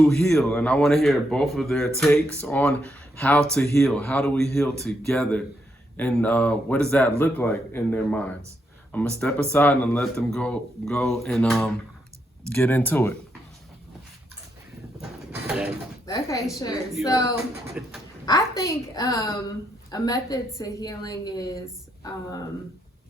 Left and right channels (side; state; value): both; normal; correlation 0.79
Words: heal? And I want to hear both of their takes on how to heal. How do we heal together? And what does that look like in their minds? I'm gonna step aside and let them go and get into it. Okay, sure. So I think a method to healing is